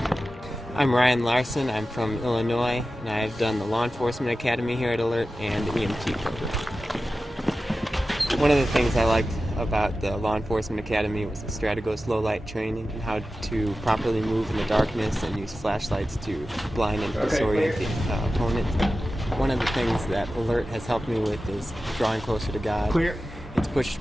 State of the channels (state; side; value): normal; both; correlation 0.93